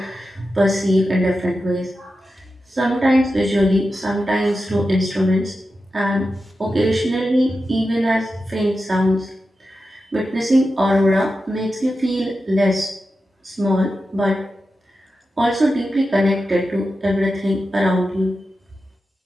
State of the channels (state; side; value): normal; both; correlation 0.91